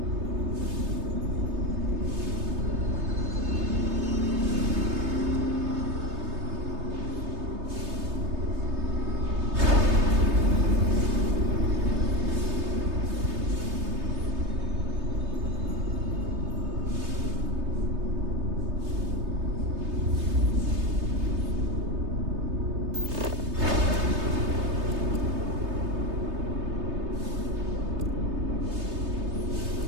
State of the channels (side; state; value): left; late; 3.3 ms